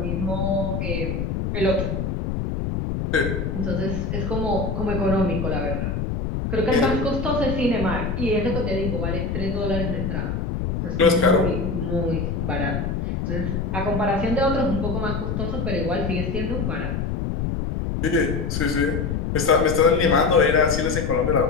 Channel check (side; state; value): left; noise; rumble, 2 dB below the sound